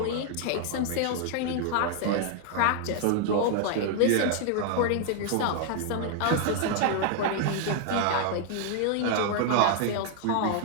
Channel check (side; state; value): both; different; correlation 0.00